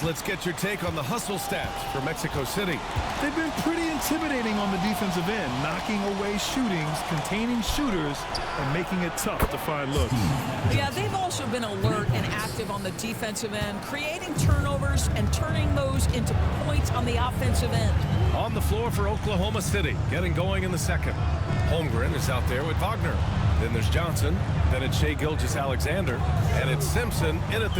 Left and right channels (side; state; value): both; identical; correlation 1.00